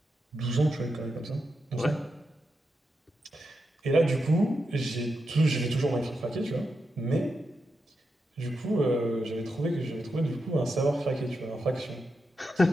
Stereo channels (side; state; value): both; normal; correlation 0.86